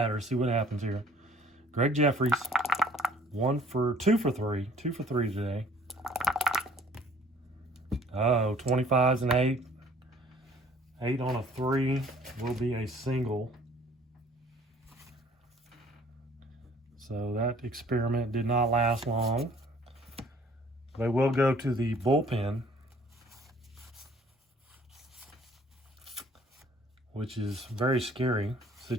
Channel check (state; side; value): normal; both; correlation 0.55